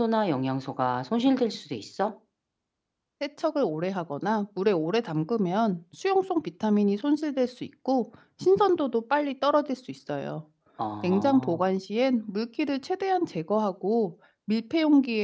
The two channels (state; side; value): identical; both; correlation 1.00